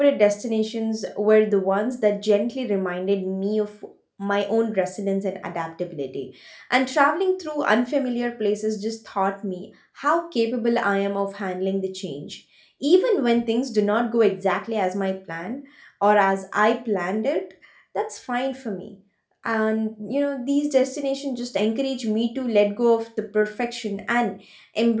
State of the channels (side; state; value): both; identical; correlation 1.00